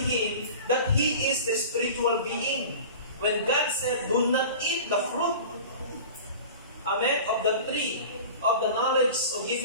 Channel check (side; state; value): both; inverted; correlation -0.37